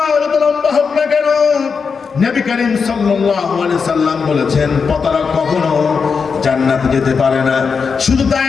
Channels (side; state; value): right; quieter; 5.5 dB